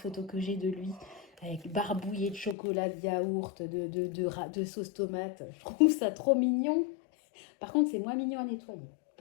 que j'ai de lui avec barbouillé de chocolat, de yaourt, de sauce tomate. Je trouve ça trop mignon. Par contre, c'est moins mignon à nettoyer.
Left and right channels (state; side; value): drops out; right; at 2.6 s